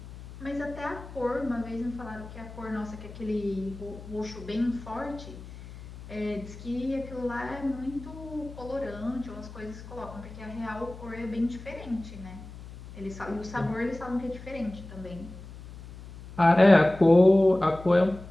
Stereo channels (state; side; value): noise; left; hum, 15 dB below the sound